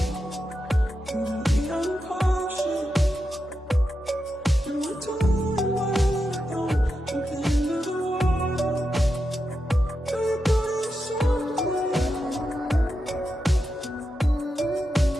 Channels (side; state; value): both; normal; correlation 0.88